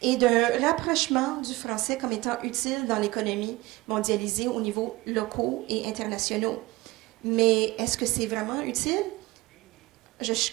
et d'un rapprochement du français comme étant utile dans l'économie mondialisée au niveau locaux et internationaux. Mais est-ce que c'est vraiment utile? Je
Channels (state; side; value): quieter; left; 20.3 dB